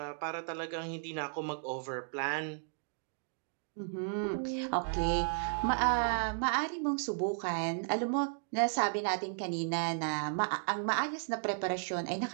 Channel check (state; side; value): silent; left; digital silence